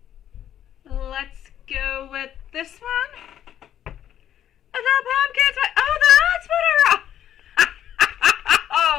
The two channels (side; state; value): right; quieter; 10.6 dB